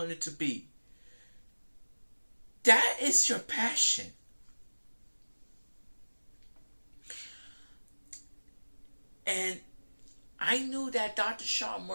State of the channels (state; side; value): inverted; both; correlation -1.00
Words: it to be. That is your passion. And I knew that Dr. Sean